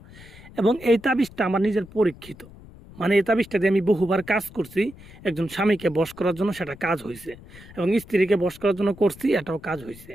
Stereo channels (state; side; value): noise; left; rumble, 20 dB below the sound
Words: এবং এই তাবিজটা আমার নিজের পরীক্ষিত, মানে এই তাবিজটা দিয়ে আমি বহুবার কাজ করছি। একজন স্বামীকে বশ করার জন্য সেটা কাজ হয়েছে, এবং স্ত্রীকে বশ করার জন্য করছি, এটাও কাজ হয়েছে।